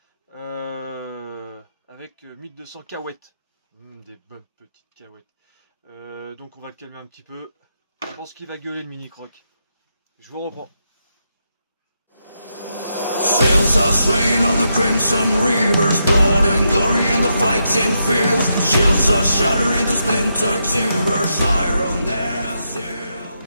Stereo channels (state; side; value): inverted; both; correlation -0.82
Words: avec 1200 cahuètes. Des bonnes petites cahuètes. Donc on va le calmer un petit peu. Je pense qu'il va gueuler le mini croc. Je vous reprends. Sails are swaying on the crimson rivers, blood and glory in the fighting fields. Shields are shattering to splintered timbers, iron their seal.